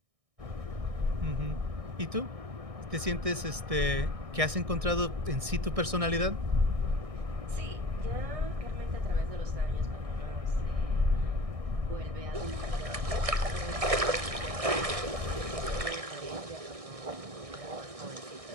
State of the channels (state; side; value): late; left; 1.6 ms